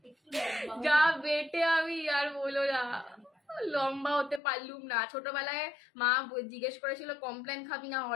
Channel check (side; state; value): right; drops out; at 4.4 s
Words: যা বেটে, আমি আর বলো না, লম্বা হতে পারলুম না। ছোটবেলায় মা জিজ্ঞেস করেছিল কমপ্লেন খাবি না